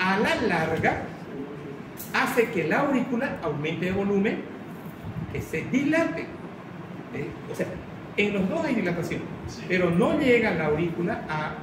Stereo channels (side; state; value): both; identical; correlation 1.00